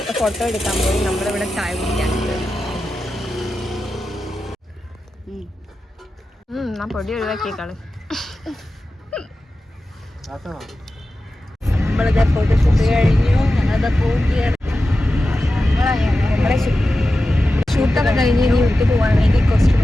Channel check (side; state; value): both; normal; correlation 0.93